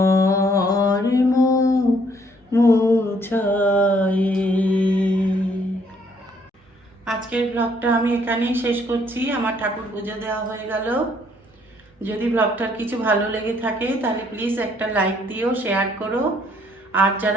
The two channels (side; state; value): both; normal; correlation 0.66